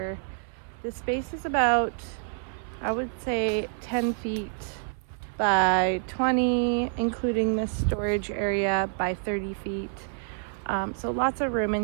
This space is about, I would say, 10 feet by 20, including this storage area, by 30 feet. So lots of room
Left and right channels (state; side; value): silent; left; 59 dB below the other